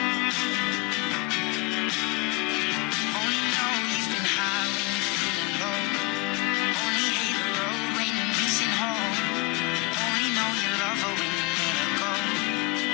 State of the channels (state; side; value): quieter; right; 25.9 dB